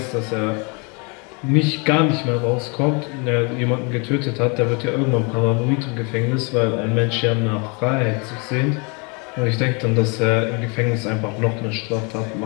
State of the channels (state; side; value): quieter; right; 32.6 dB